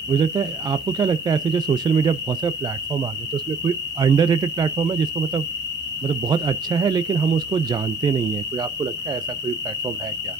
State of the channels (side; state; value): left; quieter; 4.2 dB